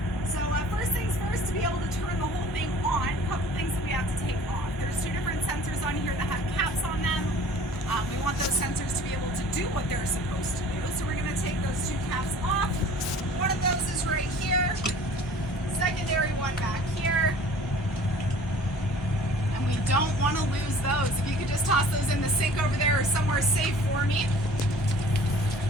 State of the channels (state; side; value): normal; both; correlation 0.48